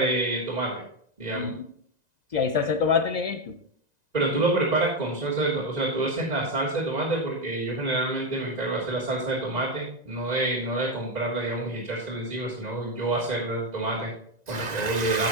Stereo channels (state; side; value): late; left; 1.9 ms